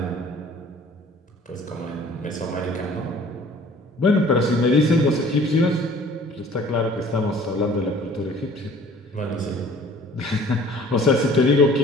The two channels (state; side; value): normal; both; correlation 0.51